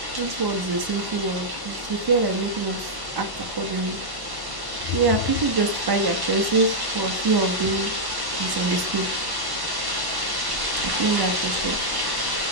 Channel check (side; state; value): left; late; 1.1 ms